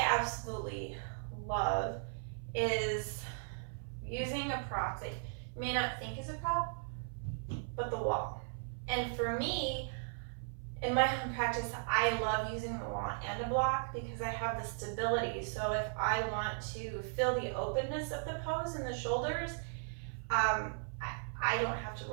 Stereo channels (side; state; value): left; silent; 53 dB below the other